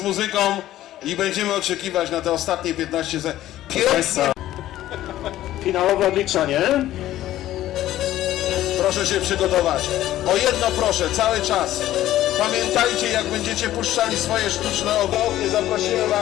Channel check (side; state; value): right; quieter; 13.8 dB